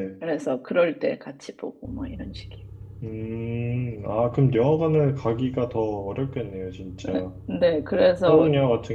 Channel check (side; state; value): both; identical; correlation 1.00